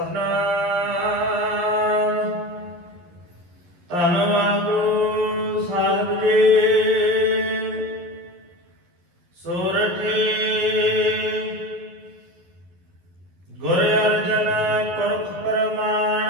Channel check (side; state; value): left; late; 11 ms